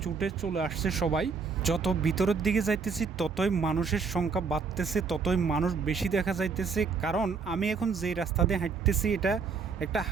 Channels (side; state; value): left; quieter; 5.2 dB